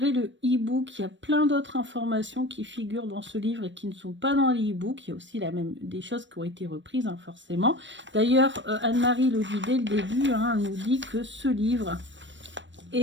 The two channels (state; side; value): late; left; 0.54 ms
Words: le e-book, il y a plein d'autres informations qui figurent dans ce livre et qui ne sont pas dans le e-book. Il y a aussi des choses qui ont été reprises, hein, forcément. D'ailleurs, Anne-Marie le dit dès le début, hein, elle nous dit que ce livre